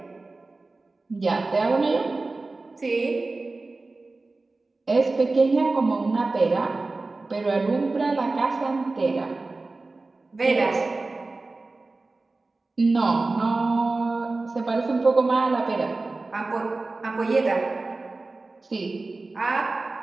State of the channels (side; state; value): left; quieter; 3.4 dB